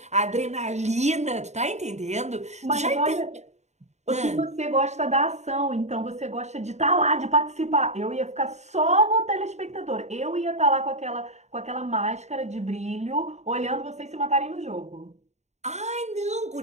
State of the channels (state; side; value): late; left; 0.33 ms